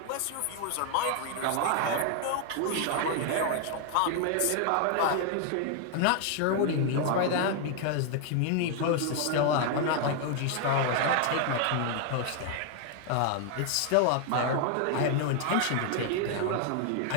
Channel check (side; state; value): both; different; correlation 0.00